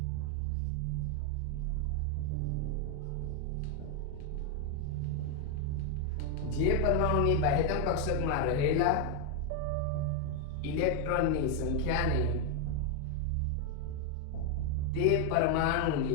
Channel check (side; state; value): both; different; correlation 0.01